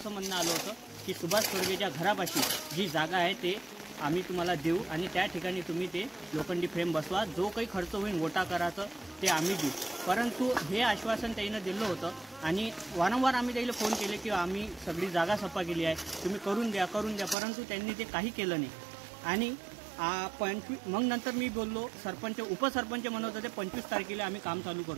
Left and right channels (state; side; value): drops out; left; at 17.4 s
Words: म्हणणं आलं होतं की सुभाष तोडगेच्या घरापाशी जी जागा आहे ते आम्ही तुम्हाला देऊ आणि त्या ठिकाणी तुम्ही ते लोखंडी फ्रेम बसवा, जो काही खर्च होईल वोटा करायचं ते आम्ही देऊ। परंतु हे आश्वासन त्यानं दिलं होतं आणि वारंवार आम्ही त्याला फोन केले की आम्ही सगळी जागा सफा केली आहे, तुम्ही करून द्या, परंतु त्यांनी ते काही केलं नाही। आणि मग नंतर मी बोललो, सरपंच उपसरपंच म्हणत होते 25 तारखेला आम्ही काम चालू